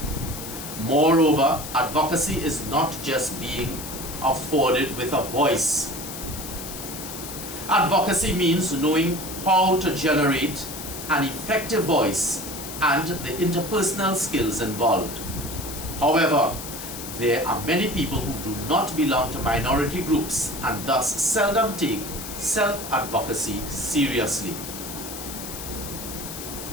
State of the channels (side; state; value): left; noise; hiss, 9 dB below the sound